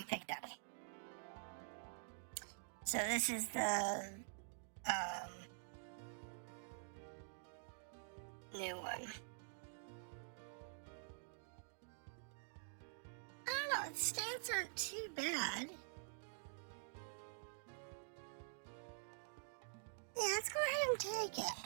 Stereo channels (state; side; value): silent; left; digital silence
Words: picked up. So this is the new one. I don't know, its stats aren't too bad. Yeah, let's go ahead and take it.